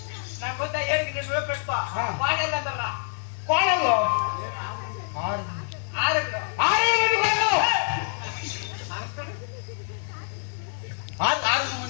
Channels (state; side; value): silent; right; 61 dB below the other